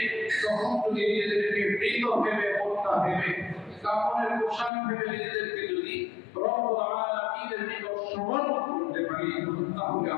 তখন যদি নিজেদেরকে মৃত ভেবে, হত্যা ভেবে, কাফনের পোশাক ভেবে নিজেদেরকে যদি রব্বুল আলামিনের নিকট সমর্পণ করতে পারি, তাহলে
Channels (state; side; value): drops out; right; at 4.7 s